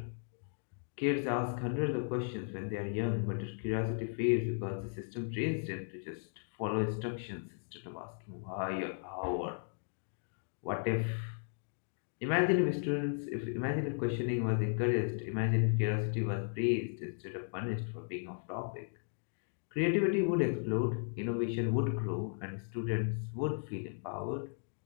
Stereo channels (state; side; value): silent; right; digital silence